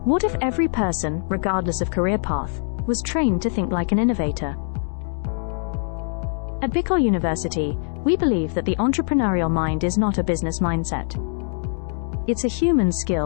What if every person, regardless of career path, was trained to think like an innovator? At Bicol University, we believe that the entrepreneurial mind is not a business mindset. It's a human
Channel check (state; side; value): silent; right; digital silence